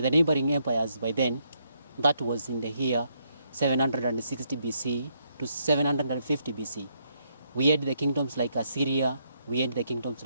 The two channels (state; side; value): inverted; both; correlation -0.75